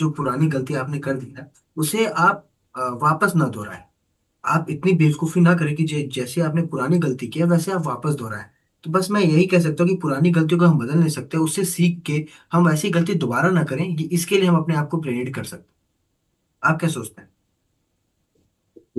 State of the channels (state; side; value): identical; both; correlation 1.00